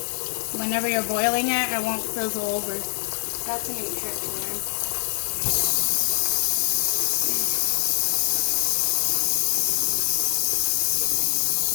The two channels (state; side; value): silent; right; digital silence